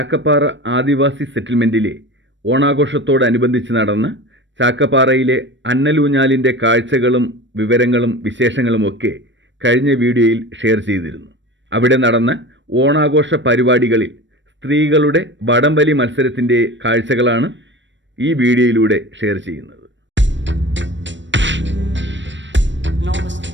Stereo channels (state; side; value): late; left; 0.54 ms